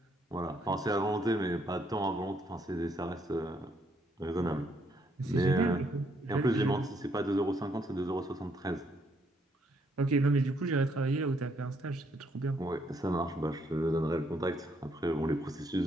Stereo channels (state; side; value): normal; both; correlation 0.72